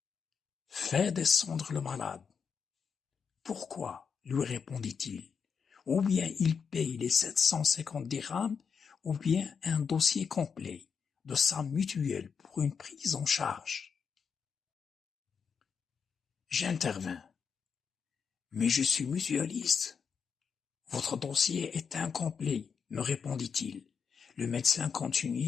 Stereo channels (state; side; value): quieter; right; 6.3 dB